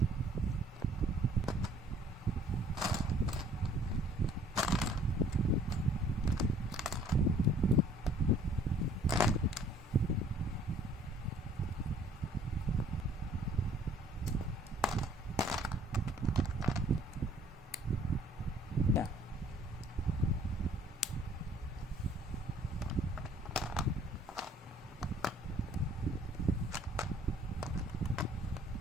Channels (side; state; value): both; normal; correlation 0.57